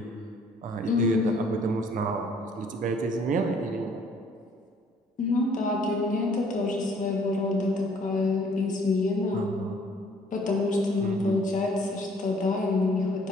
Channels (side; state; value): both; normal; correlation 0.59